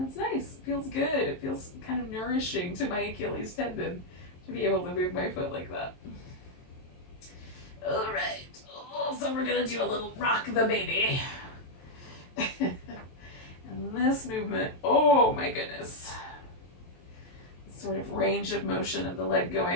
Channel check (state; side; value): late; right; 23 ms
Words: it's nice, it feels good. It feels kind of nourishing to my Achilles tendon to be able to move my foot like that. All right, so we're gonna do a little rock the baby. And this movement, oh my goodness. Sort of range of motion of the leg